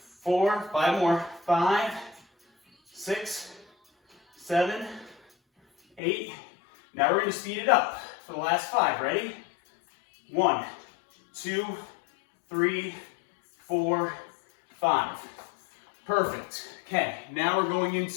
4, 5 more. 5, 6, 7, 8. Now we're going to speed it up for the last 5. Ready? 1, 2, 3, 4, 5. Perfect. Okay, now we're going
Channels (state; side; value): drops out; right; at 6.0 s